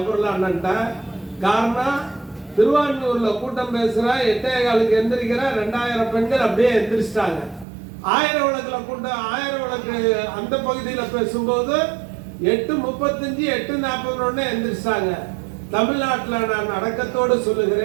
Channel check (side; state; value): left; drops out; at 7.7 s